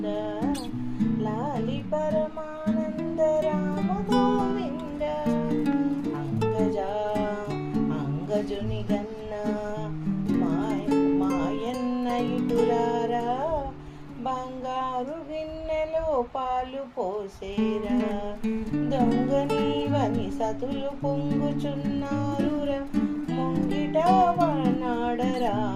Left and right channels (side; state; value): both; identical; correlation 1.00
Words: లాలి పరమానంద రామ గోవింద. అంగజుని గన్న మాయన్న ఇటురారా బంగారు గిన్నెలో పాలు పోసేరా దొంగ నీవని సతులు పొంగుచున్నారురా ముంగిట వనాడరా